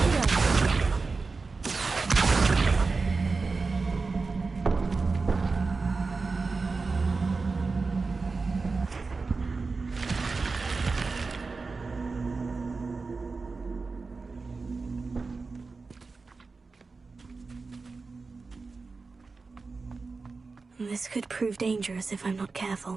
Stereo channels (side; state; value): left; quieter; 4.2 dB